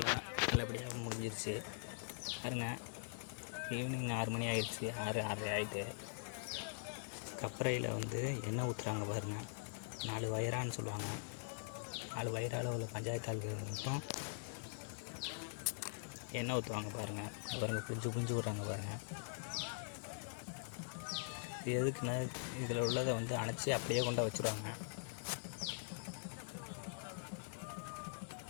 நல்லபடியாக முடிஞ்சிருச்சு பாருங்க. ஈவினிங் 6 மணி ஆகிடுச்சு, 6:30 ஆகிட்டு. கப்பறையில் எண்ணெய் ஊற்றுறாங்க பாருங்கள். 4 வயரான்னு சொல்லுவாங்க. 4 வயரால் உள்ள பஞ்சாயத்து ஆளுகள் மட்டும் எண்ணெய் ஊற்றுவாங்க பாருங்கள். பாருங்கள், புரிஞ்சு விட்றாங்க பாருங்கள். இது எதுக்குன்னா, இதில் உள்ளதை அணைச்சி அப்படியே கொண்டு வச்சுருவாங்க.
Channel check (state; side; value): silent; right; digital silence